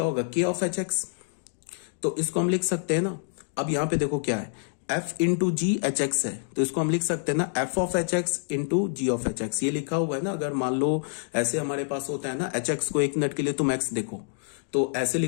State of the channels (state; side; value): silent; right; digital silence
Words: होगा, k ऑफ एच एक्स। तो इसको हम लिख सकते हैं ना, अब यहां पे देखो क्या है, f into G H X है, तो इसको हम लिख सकते हैं ना f of H x into G of H X. ये लिखा हुआ है ना, अगर मान लो ऐसे हमारे पास होता है ना, एच एक्स को एक मिनट के लिए तुम x देखो, तो ऐसे